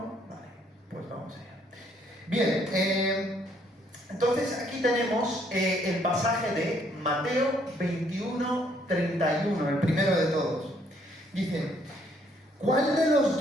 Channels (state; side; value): normal; both; correlation 0.67